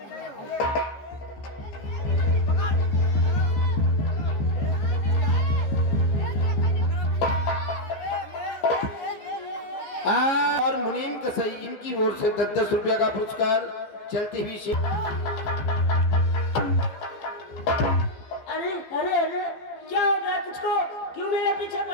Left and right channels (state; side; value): late; right; 14 ms